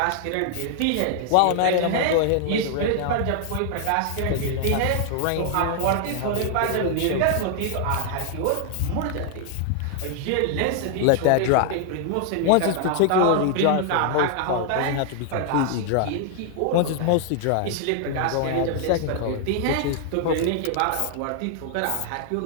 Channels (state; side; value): different; both; correlation 0.00